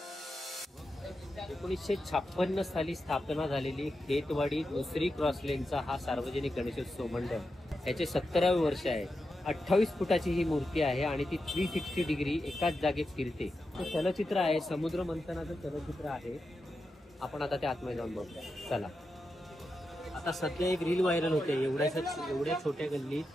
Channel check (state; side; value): normal; both; correlation 0.88